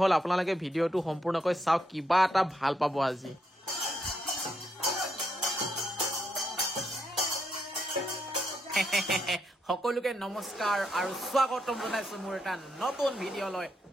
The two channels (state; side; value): normal; both; correlation 0.78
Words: আপোনালোকে ভিডিঅটো সম্পূৰ্ণকৈ চাওক কিবা এটা ভাল পাব আজি সকলোকে নমস্কাৰ আৰু স্বাগতম জনাইছো মোৰ এটা নতুন ভিডিঅলৈ